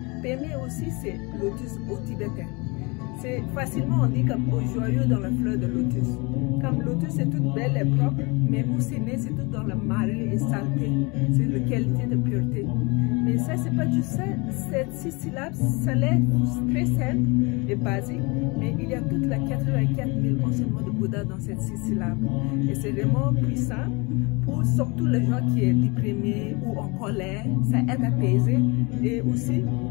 Peme aussi, c'est lotus au tibétain. C'est facilement, on dit comme au joyau dans la fleur de lotus. Comme lotus, c'est toute belle et propre, mais où c'est né, c'est tout dans la marée et saleté. C'est la qualité de pureté. Mais ça, c'est pas juste ça. Cette 6 syllabes, ça l'est très simple et basique, mais il y a toute la 84 000 enseignements de Bouddha dans cette 6 syllabes. Et c'est vraiment puissant pour surtout les gens qui sont déprimés ou en colère. Ça aide à apaiser. Et aussi,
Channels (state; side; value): quieter; right; 27.8 dB